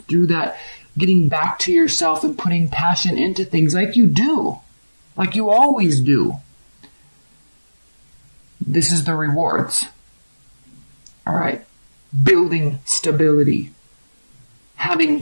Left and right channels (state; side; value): inverted; both; correlation -1.00